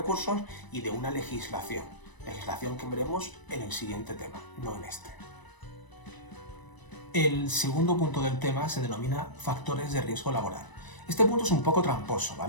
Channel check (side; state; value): right; late; 1.0 ms